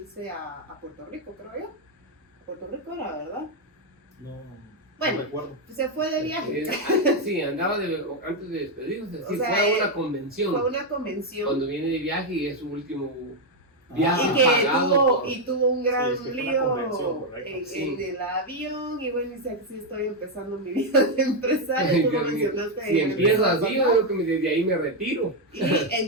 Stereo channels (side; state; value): both; normal; correlation 0.02